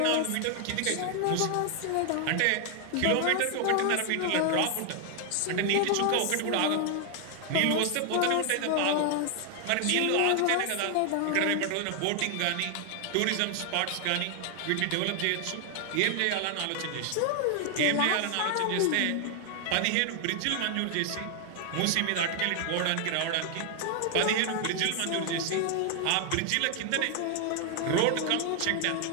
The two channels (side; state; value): both; different; correlation 0.00